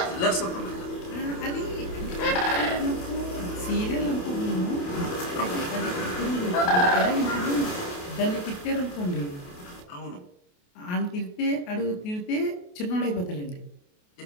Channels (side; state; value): right; late; 28 ms